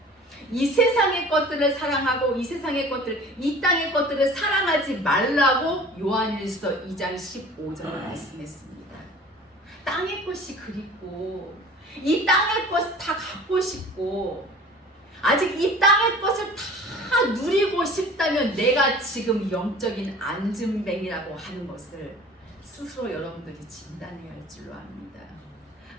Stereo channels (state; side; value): normal; both; correlation 0.45